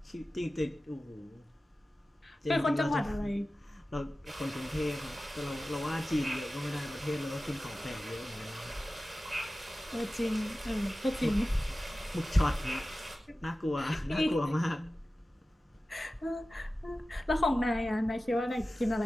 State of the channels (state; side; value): normal; both; correlation 0.95